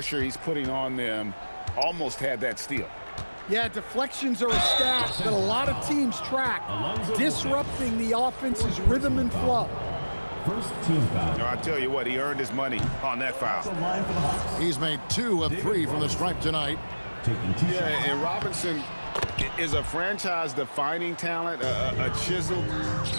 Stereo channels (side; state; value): both; inverted; correlation -1.00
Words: he's putting on them. Almost had that steal. Yeah, deflections are a stat that a lot of teams track, disrupting the offense's rhythm and flow. First team foul. I tell you what, he earned his money on that foul. Line for the Hawks. He's made 2 of 3 from the stripe tonight. Taking 2 Yeah, shots. and Robinson is a franchise-defining talent, a chiseled,